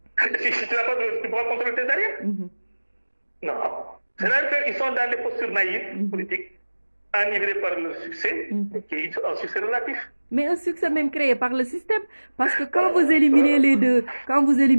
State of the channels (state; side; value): inverted; both; correlation -1.00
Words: tu n'as pas de, tu pourras contrôler tes arrières. Non. C'est-à-dire qu'ils sont dans des postures naïves, politiques, enivrés par le succès, qui est un succès relatif. Mais un succès même créé par le système, parce que quand vous éliminez les